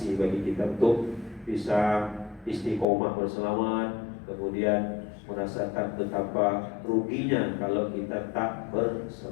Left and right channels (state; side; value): drops out; right; at 2.9 s